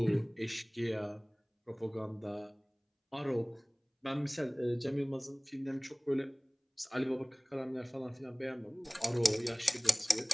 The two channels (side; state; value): both; identical; correlation 1.00